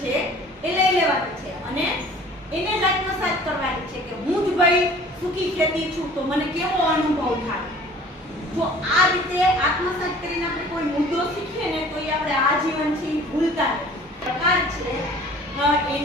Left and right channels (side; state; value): both; normal; correlation 0.49